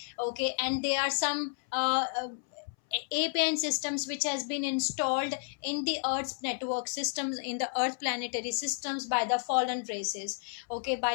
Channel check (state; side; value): silent; right; 57 dB below the other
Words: okay, and there are some APN systems which has been installed in the Earth's network systems, in the Earth planetary systems by the fallen races, okay,